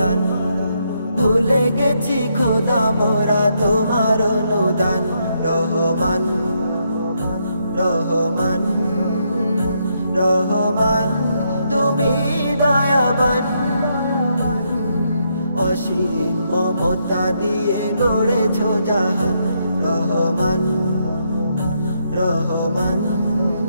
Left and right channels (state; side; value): inverted; both; correlation -0.77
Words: ভুলে গেছি খোদা মোরা তোমার অনুদান। রহমান রহমান রহমান তুমি দয়াবান, অসীম মমতা দিয়ে গড়েছো জাহান। রহমান রহমান